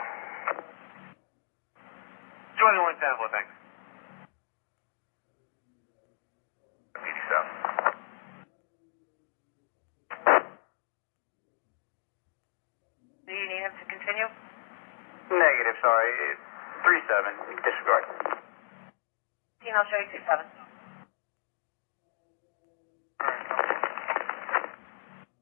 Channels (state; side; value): silent; right; digital silence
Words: 21 10-4, thanks. 87. Do you need him to continue? Negative, sorry. 37, disregard. I'll show you 27.